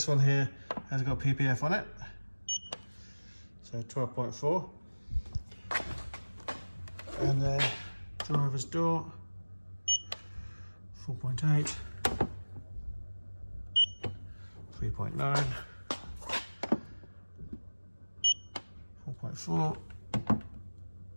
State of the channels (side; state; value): both; inverted; correlation -1.00